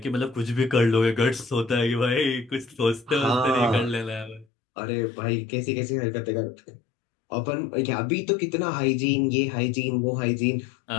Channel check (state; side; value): drops out; right; at 4.5 s